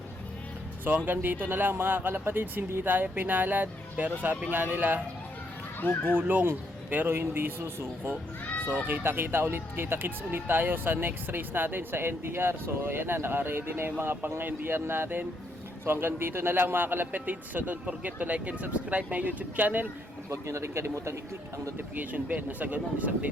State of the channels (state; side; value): normal; both; correlation 0.74